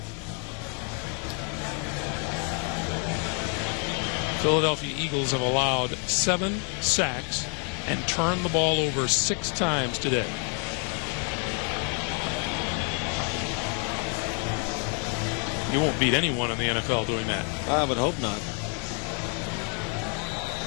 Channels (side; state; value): right; quieter; 39.6 dB